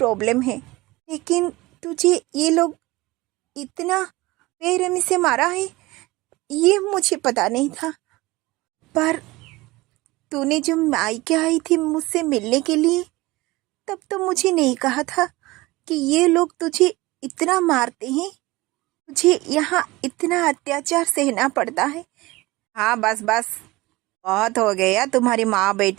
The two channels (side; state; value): left; quieter; 20.7 dB